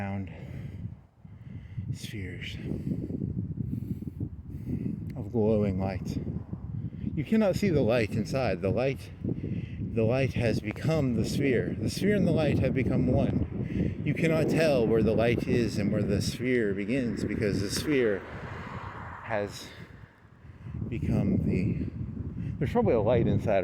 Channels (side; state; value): both; identical; correlation 1.00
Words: spheres of glowing light. You cannot see the light inside. The light has become the sphere. The sphere and the light have become one. You cannot tell where the light is and where the sphere begins, because the sphere has become there's probably a light